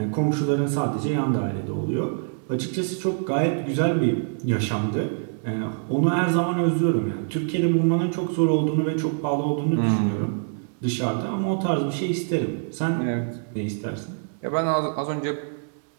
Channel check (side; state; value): left; silent; digital silence